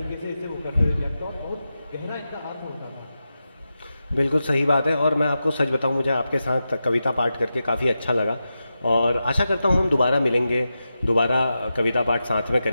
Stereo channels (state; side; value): inverted; both; correlation -0.90